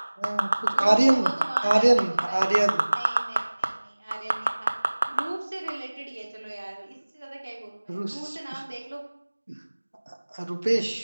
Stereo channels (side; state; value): both; inverted; correlation -1.00